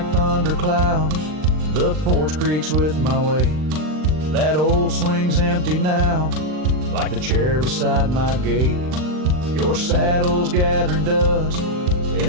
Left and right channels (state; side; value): late; left; 39 ms